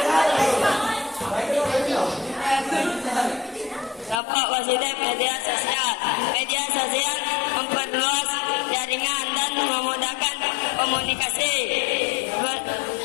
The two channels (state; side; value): drops out; right; at 4.2 s